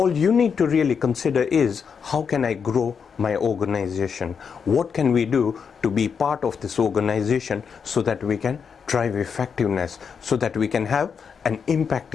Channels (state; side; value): quieter; right; 6.4 dB